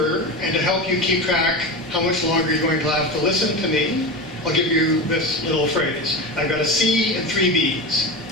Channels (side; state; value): both; normal; correlation 0.24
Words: and to help you keep track how much longer you're going to have to listen to me, I'll give you this little phrase. I've got a C and 3 Bs.